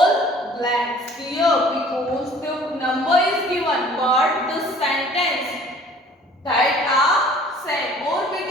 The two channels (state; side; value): normal; both; correlation 0.51